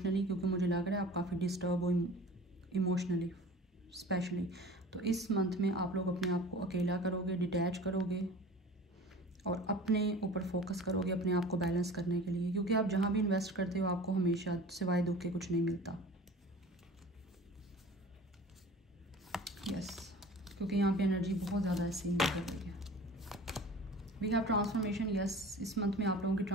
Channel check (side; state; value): both; normal; correlation 0.41